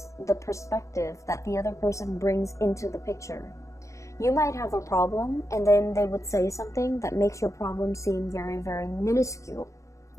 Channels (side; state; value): right; late; 0.15 ms